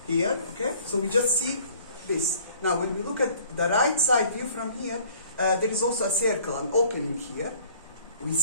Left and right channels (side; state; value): both; inverted; correlation -0.54